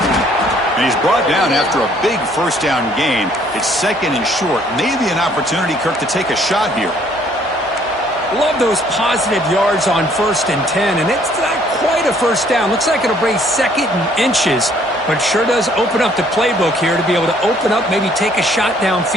And he's brought down after a big first down gain. It's second and short. Maybe an opportunity, Kirk, to take a shot here. Love those positive yards on 1st and 10, and it's not quite a first down. Looks like it'll bring second and inches, but sure does open up the playbook here to be able to open up, maybe take a shot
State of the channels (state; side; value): normal; both; correlation 0.62